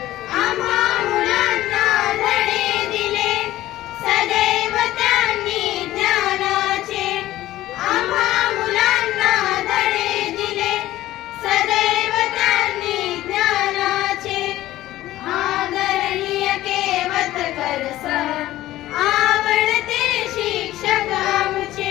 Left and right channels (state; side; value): quieter; right; 15.3 dB